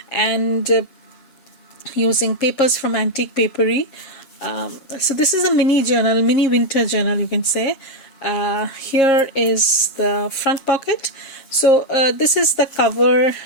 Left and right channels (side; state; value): right; late; 7.4 ms